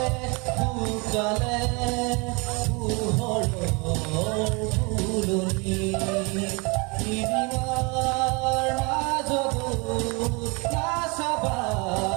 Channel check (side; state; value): left; quieter; 29.8 dB